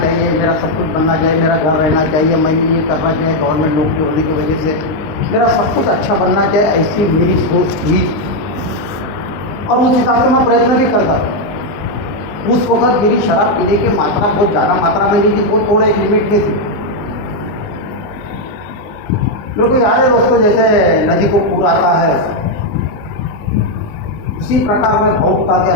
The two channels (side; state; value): right; late; 19 ms